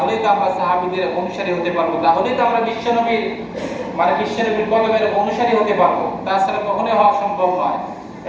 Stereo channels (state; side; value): identical; both; correlation 1.00